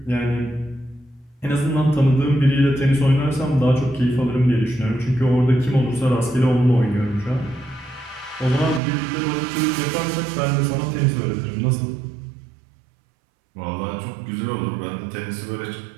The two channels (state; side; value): drops out; left; at 8.8 s